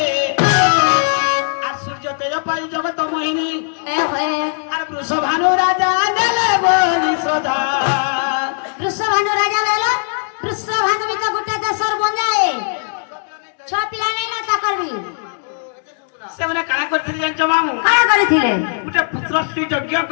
আর সূর্য তেজ পাই জগত মোহিনী ए होए আর বৃষভানু রাজা দেলে বলি সদা वृषभानु राजा वेला वृषभानु में गुटे दसर बन जाए छ पिला नै ना ताकरबी সেমানে কানা করতে জানছ মামু काना करिथिले গুটে পুত্র শ্রী যজ্ঞ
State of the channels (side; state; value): right; silent; 65 dB below the other